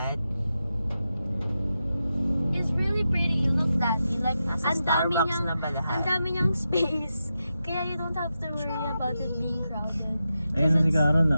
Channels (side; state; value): both; inverted; correlation -0.89